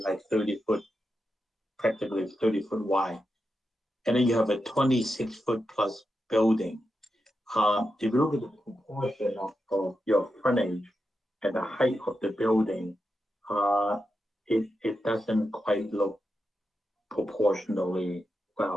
like 30 foot, practically 30 foot wide. And then you have a 26 foot plus building. If you look at the proportion of your frontage and the height of the building, it doesn't quite look proportionally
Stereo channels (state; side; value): normal; both; correlation 0.88